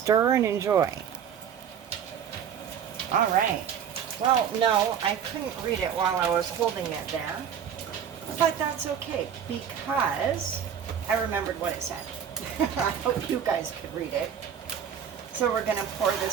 and enjoy. All right. Well, no, I couldn't read it while I was holding it there. But that's okay because I remembered what it said. I hope you guys could read it. So we're going to pour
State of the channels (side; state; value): left; quieter; 8.3 dB